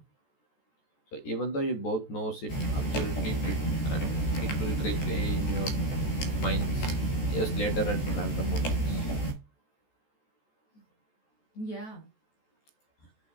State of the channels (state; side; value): late; right; 14 ms